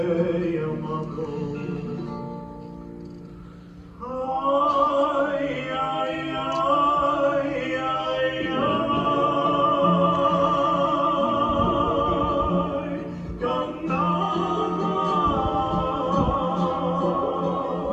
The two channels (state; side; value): identical; both; correlation 1.00